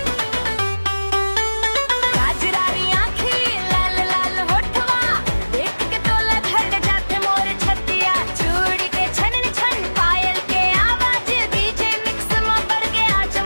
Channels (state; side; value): inverted; both; correlation -1.00